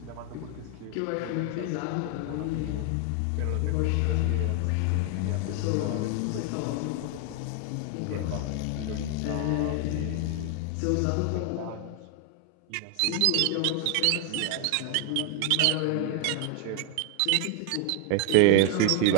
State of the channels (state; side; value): different; both; correlation 0.00